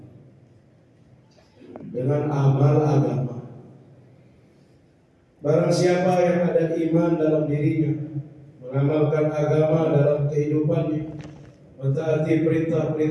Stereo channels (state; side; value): identical; both; correlation 1.00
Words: dengan amal agama. Barang siapa yang ada iman dalam dirinya, mengamalkan agama dalam kehidupannya, mentaati